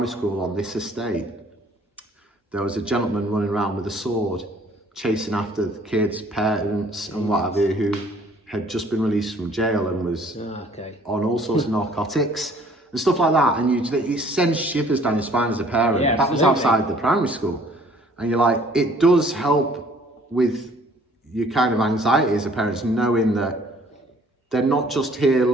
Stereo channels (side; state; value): both; normal; correlation 0.57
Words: school on this estate, there was a gentleman running around with a sword chasing after the kids, parents and what have you, who had just been released from jail and was on all sorts of narcotics and stuff like that. And it sends shivers down your spine as a parent. Yeah, that was outside the primary school. And you're like, it does help with your kind of anxiety as a parent, knowing that they're not just here